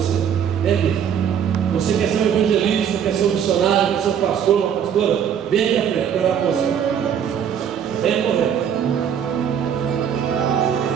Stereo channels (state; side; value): quieter; left; 8.4 dB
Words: Vem aqui. Você quer ser um evangelista, quer ser um missionário, quer ser um pastor, uma pastora? Vem aqui à frente, quero falar com você. Vem correndo.